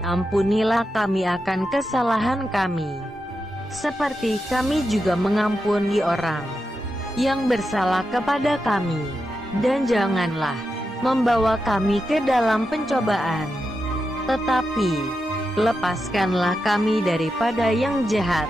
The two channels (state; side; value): normal; both; correlation 0.88